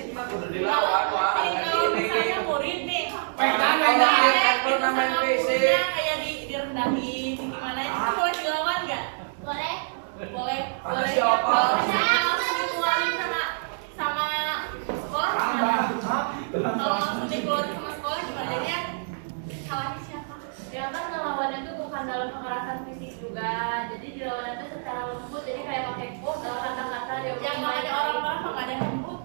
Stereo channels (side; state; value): left; silent; digital silence